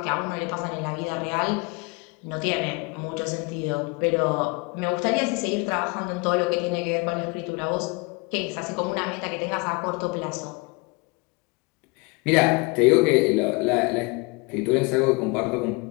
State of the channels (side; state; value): right; quieter; 27.8 dB